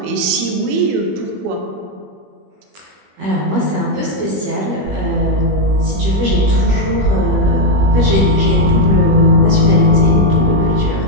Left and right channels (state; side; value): late; left; 20 ms